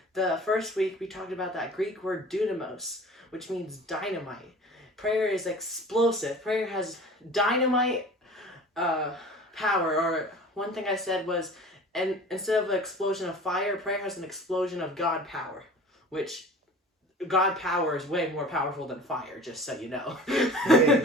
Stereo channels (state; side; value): normal; both; correlation 0.41